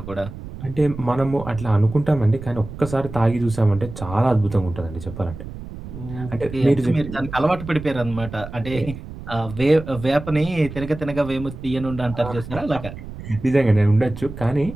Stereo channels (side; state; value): right; noise; rumble, 12 dB below the sound